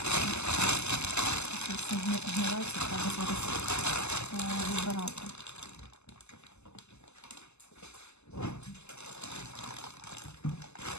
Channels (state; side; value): late; right; 0.81 ms